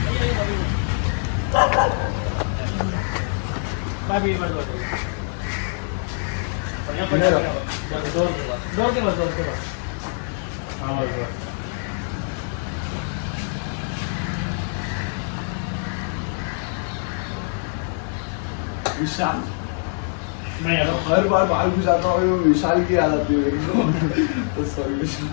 विशाल हर बार बाल घुसाता हूँ वो विशाल की याद आती है मेरे को तो सॉरी विशाल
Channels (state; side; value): silent; right; 63 dB below the other